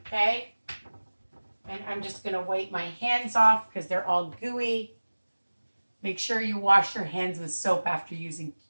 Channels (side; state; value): both; inverted; correlation -1.00